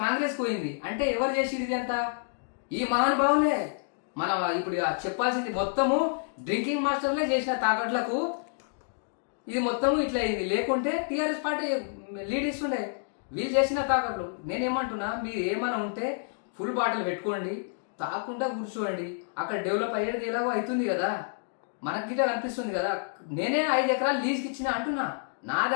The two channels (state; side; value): silent; right; digital silence